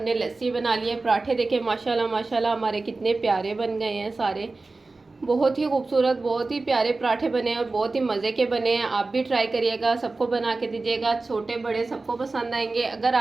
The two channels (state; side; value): quieter; left; 3.5 dB